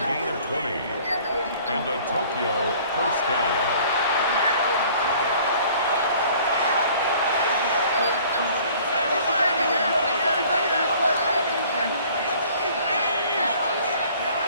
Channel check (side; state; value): both; inverted; correlation -0.52